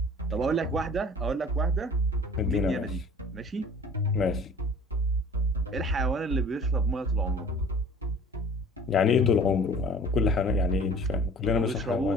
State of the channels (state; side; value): normal; both; correlation 0.47